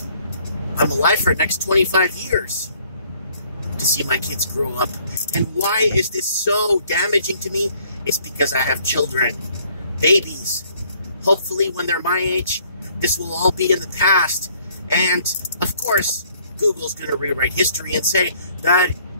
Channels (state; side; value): inverted; both; correlation -0.62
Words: I'm alive for the next 25 years to see my kids grow up. And why is this so damaging to me? It's because I have children, babies. Hopefully when they're my age, this will all be in the past. And of course, Google's going to rewrite history and say that